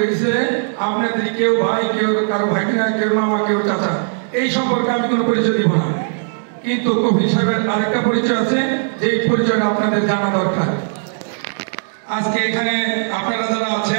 গেছে। আপনাদের কেউ ভাই, কেউ কারো ভাগিনা, কেউ মামা, কেউ চাচা, এই সম্পর্কে আমি কোনো পরিচয় দিব না। কিন্তু কফি সাহেবের আরেকটা পরিচয় আছে, যে পরিচয়টা আপনাদের জানা দরকার। আজকে এখানে আপনারা যারা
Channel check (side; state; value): left; silent; digital silence